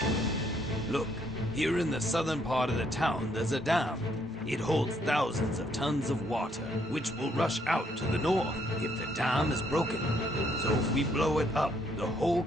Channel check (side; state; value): both; normal; correlation 0.70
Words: with. Look, here in the southern part of the town, there's a dam. It holds thousands of tons of water, which will rush out to the north if the dam is broken. So if we blow it up, the whole